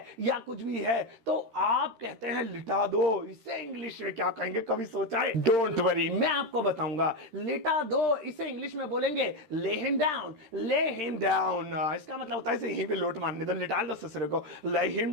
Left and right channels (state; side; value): late; left; 13 ms